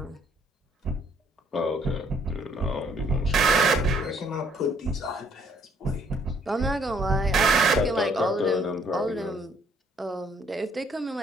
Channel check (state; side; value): normal; both; correlation 0.64